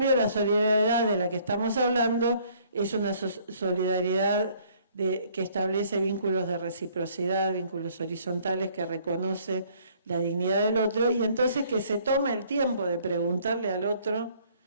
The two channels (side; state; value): both; inverted; correlation -0.61